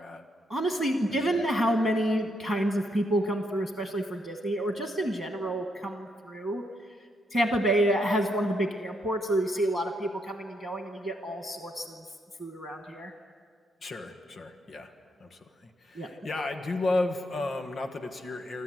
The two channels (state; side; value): normal; both; correlation 0.77